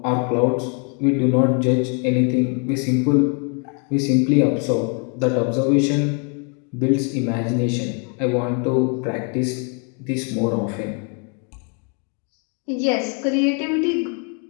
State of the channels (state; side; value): quieter; right; 38.3 dB